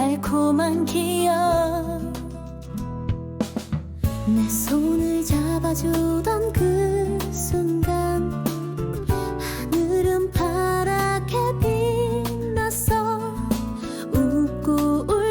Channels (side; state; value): both; identical; correlation 1.00